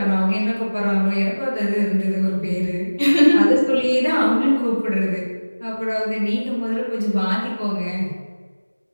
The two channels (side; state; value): both; inverted; correlation -1.00